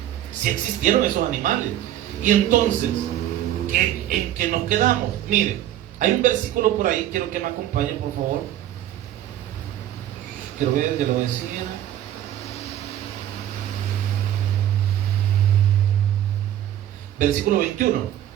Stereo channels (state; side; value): quieter; left; 11.9 dB